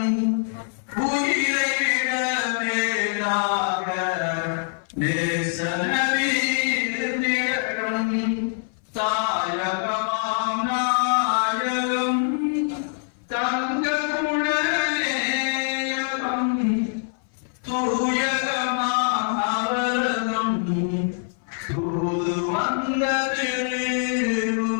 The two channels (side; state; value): right; silent; 58 dB below the other